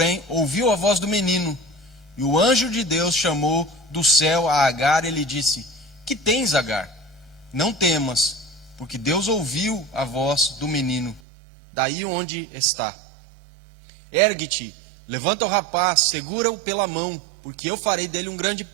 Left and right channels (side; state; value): left; drops out; at 11.2 s